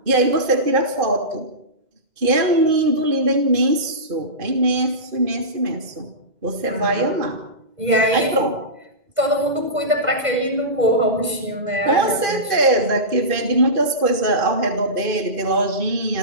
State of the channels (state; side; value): late; left; 2.5 ms